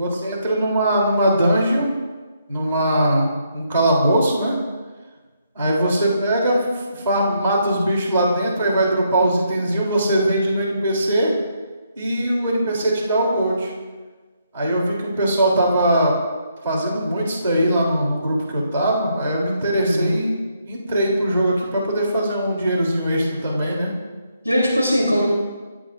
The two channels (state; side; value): inverted; both; correlation -0.75